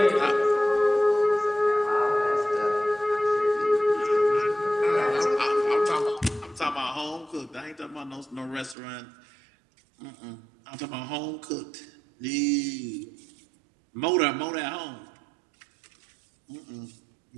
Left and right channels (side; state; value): left; drops out; at 8.8 s